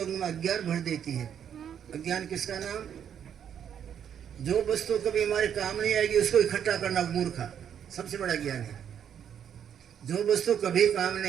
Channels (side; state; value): left; quieter; 8.7 dB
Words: में अज्ञान भर देती है। अज्ञान किसका नाम? जो वस्तु कभी हमारे काम नहीं आएगी उसको इकट्ठा करना मूर्खा सबसे बड़ा ज्ञान है। जो वस्तु कभी काम